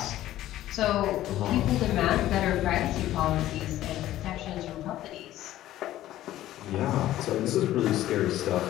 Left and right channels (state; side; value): quieter; right; 14.1 dB